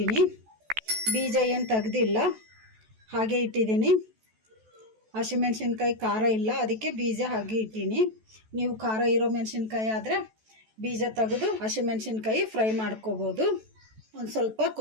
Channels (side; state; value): left; late; 14 ms